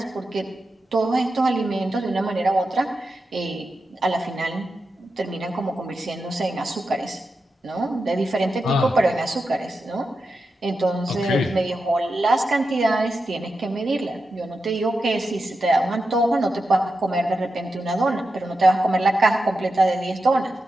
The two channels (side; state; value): both; normal; correlation 0.89